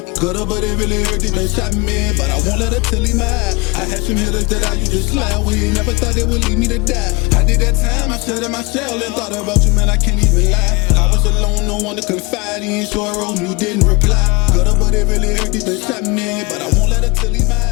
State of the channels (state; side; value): quieter; right; 25.9 dB